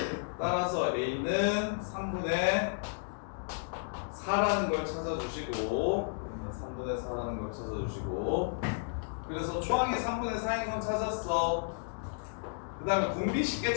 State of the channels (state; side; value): silent; right; digital silence